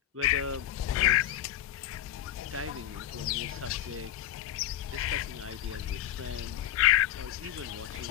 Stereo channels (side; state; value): right; quieter; 12.5 dB